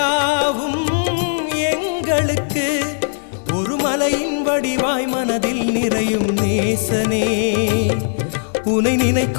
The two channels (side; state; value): right; silent; 58 dB below the other